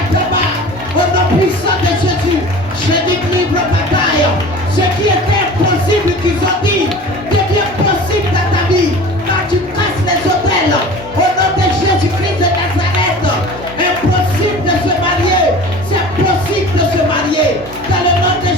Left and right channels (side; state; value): both; normal; correlation 0.40